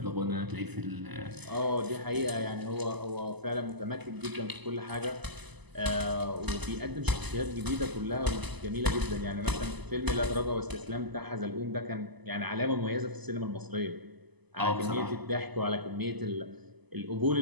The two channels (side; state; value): left; late; 0.99 ms